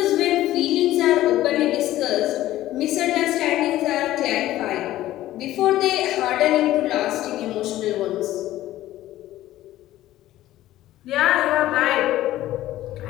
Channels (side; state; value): right; quieter; 14.6 dB